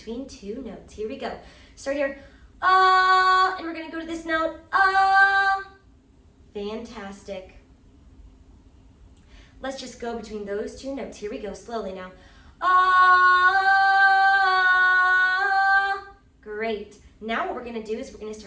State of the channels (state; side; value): identical; both; correlation 1.00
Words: two notes. Here we go. Start here. And we're going to go to this note. Fantastic. Let's just go between those two notes. Here we go. Slowly now. Great. Now what we're going to do is we're going to